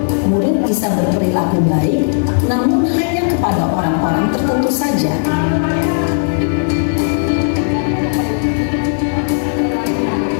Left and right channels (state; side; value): silent; right; 65 dB below the other